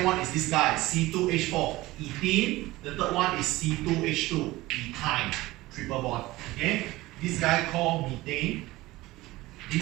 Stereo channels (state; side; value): quieter; left; 18.8 dB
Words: one is this guy, C2H4, ethene. The third one is C2H2, ethyne, triple bond. Okay, this guy called methane.